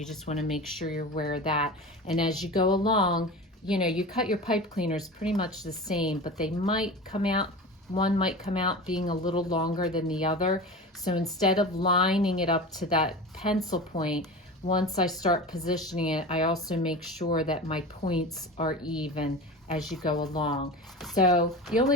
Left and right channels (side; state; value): both; normal; correlation 0.31